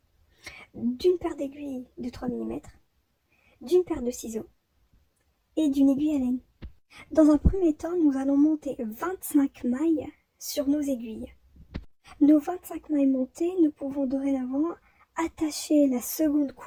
d'une paire d'aiguilles de 3 mm, d'une paire de ciseaux et d'une aiguille à laine. Dans un premier temps, nous allons monter 25 mailles sur nos aiguilles. Nos 25 mailles montées, nous pouvons dorénavant attacher la seconde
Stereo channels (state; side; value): identical; both; correlation 1.00